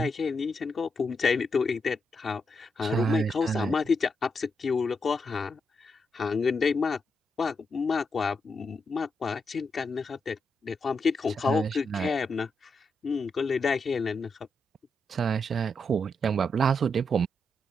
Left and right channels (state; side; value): normal; both; correlation 0.83